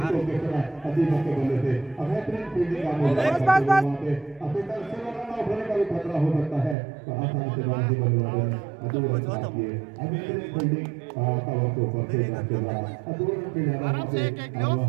बल्ले से बेहतरीन फील्डिंग का खतरा हो सकता है, तो आसानी से बाजी बल्लेबाजी फील्डिंग कवर के ऊपर से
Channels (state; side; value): drops out; left; at 6.8 s